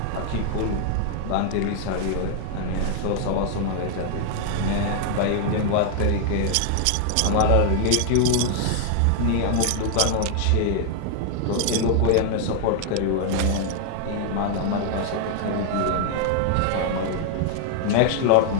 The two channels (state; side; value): different; both; correlation 0.00